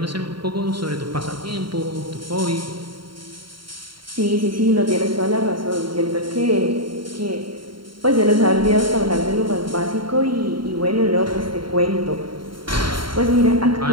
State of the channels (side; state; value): left; late; 0.73 ms